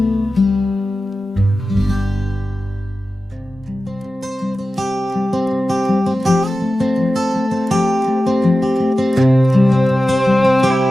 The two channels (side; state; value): both; normal; correlation 0.94